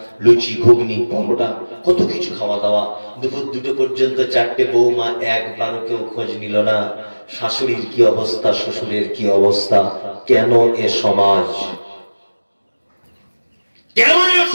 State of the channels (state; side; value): inverted; both; correlation -1.00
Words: লুচি, ঘুগনি, পরোটা, কত কিছু খাওয়া দাওয়া। দুপুর 2টো পর্যন্ত 4টে বৌমা একবারও কেউ খোঁজ নিল না শাশুড়ির কি অবস্থা, শ্বশুরের কি অবস্থা। কেন এ সমাজ? কেন এ